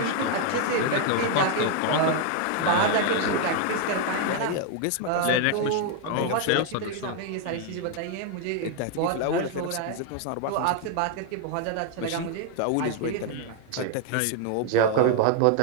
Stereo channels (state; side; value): different; both; correlation 0.00